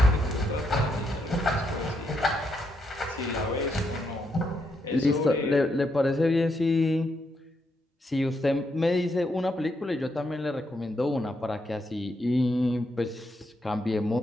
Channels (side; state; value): both; normal; correlation 0.79